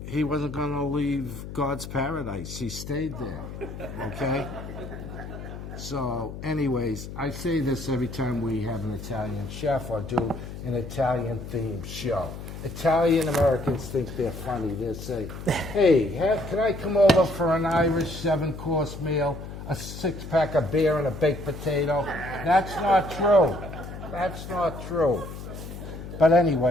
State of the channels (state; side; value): noise; left; hum, 10 dB below the sound